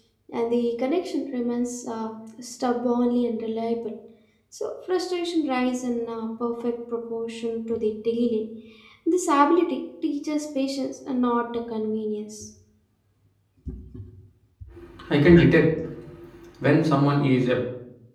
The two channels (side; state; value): both; identical; correlation 1.00